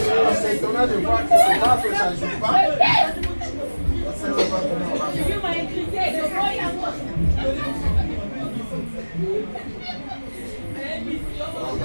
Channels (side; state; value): both; inverted; correlation -1.00